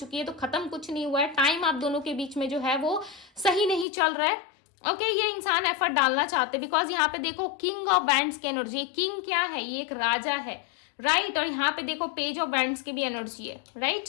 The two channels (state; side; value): drops out; right; at 3.9 s